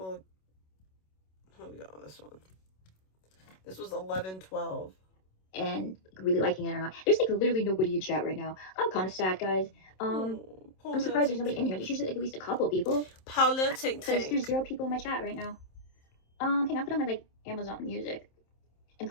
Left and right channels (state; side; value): late; right; 27 ms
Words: here we go. This one. This was 11/12. And really liking it or not. There's like literally nobody in chat right now. I'm kind of sad, guys. I'm surprised there's nobody in here. There's usually like at least a couple people. Paula Tink Because Tink. there's 0 people in my chat right now. Hang on, put on my like Amazon Music and